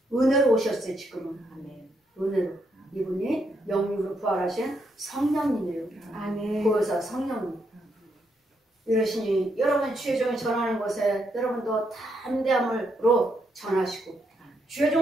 은혜로 오셨어요. 지금은. 아멘. 은혜로. 이분이 영으로 부활하신 성령님이에요. 아멘. 보혜사 성령님. 이러시니 여러분 주의 종이 전하는 것에 여러분도 담대함으로 전하시고 주의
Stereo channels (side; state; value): both; normal; correlation 0.77